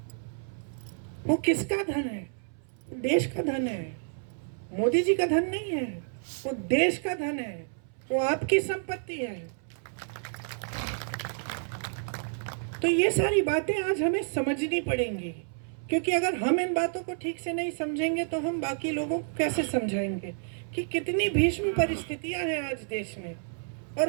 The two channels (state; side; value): silent; left; 58 dB below the other